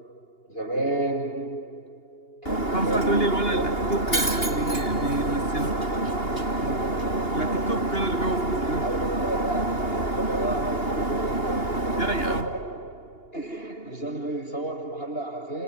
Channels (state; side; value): late; right; 2.8 ms